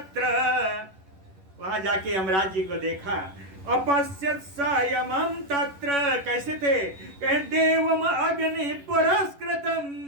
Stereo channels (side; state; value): left; late; 11 ms